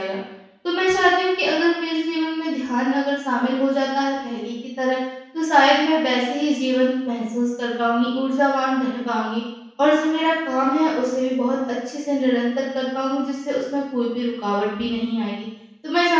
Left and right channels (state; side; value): identical; both; correlation 1.00